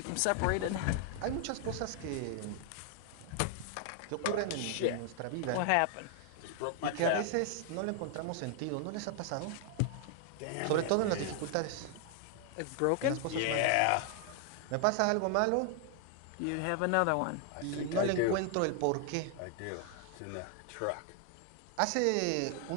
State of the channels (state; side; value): different; both; correlation 0.00